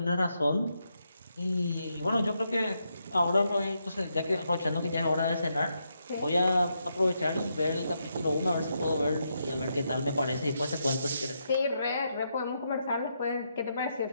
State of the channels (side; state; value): both; inverted; correlation -0.81